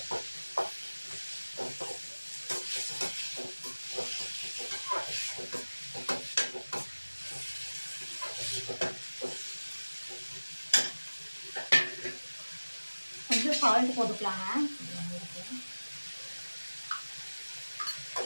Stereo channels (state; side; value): inverted; both; correlation -1.00